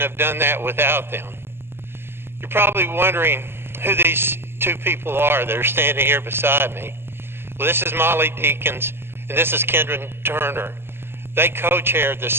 have done that without them. You're probably wondering who these two people are that are standing here beside me. Well, this is Molly Deakins, and this is Kendra Turner. They co-chaired the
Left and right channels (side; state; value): left; late; 0.11 ms